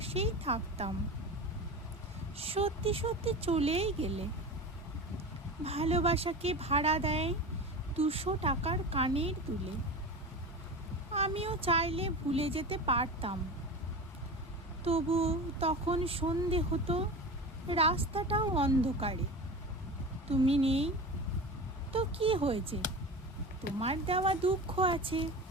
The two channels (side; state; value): both; normal; correlation 0.30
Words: থাকতাম। সত্যি সত্যি চলেই গেলে। ভালোবাসাকে ভাড়া দেয় 200 টাকার কানের দুলে। আমিও চাইলে ভুলে যেতে পারতাম, তবু তখন সন্ধে হতো, রাস্তাটাও অন্ধকারে। তুমি নেই তো কি হয়েছে, তোমার দেওয়া দুঃখ আছে।